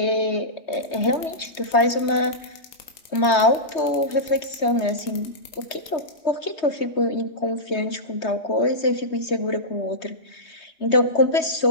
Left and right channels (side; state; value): right; late; 3.2 ms